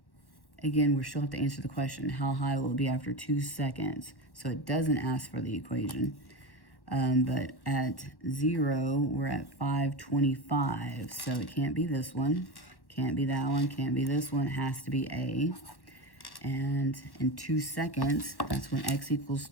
Again, we still have to answer the question, how high will it be after 2 seconds? So it doesn't ask for the equation. But at 0, we're at 525. So it can't be this one, can't be that one, can't be this one. It has to be A. And in 2 seconds, that's when x equals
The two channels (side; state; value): right; late; 1.1 ms